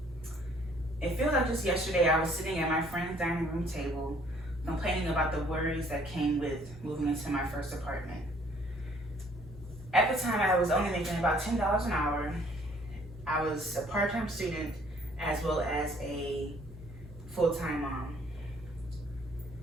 It feels like just yesterday I was sitting at my friend's dining room table complaining about the worries that came with moving into my first apartment. At the time, I was only making about $10 an hour. I was a part-time student as well as a full-time mom.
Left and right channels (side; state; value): both; normal; correlation 0.60